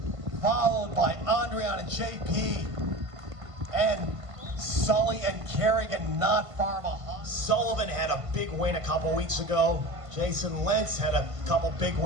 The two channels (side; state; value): left; late; 1.5 ms